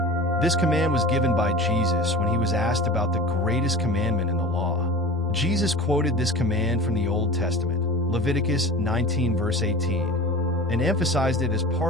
This command was given by Jesus when he was asked about the greatest commandment in the law. Jesus quoted this command from the Old Testament, Leviticus 19, verse 18, and emphasized it as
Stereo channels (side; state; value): both; normal; correlation 0.36